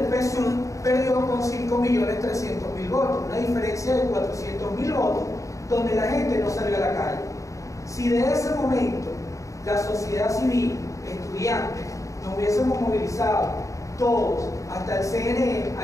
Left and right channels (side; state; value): right; late; 0.16 ms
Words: PSUV perdió con 5.300.000 votos, una diferencia de 400.000 votos, donde la gente no salió a la calle. Si de ese momento la sociedad civil, estudiantes, nos hubiésemos movilizado todos hasta el CNE